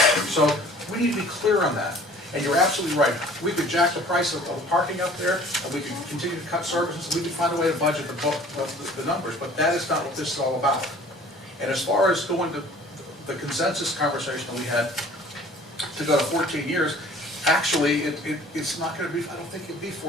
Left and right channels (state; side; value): normal; both; correlation 0.50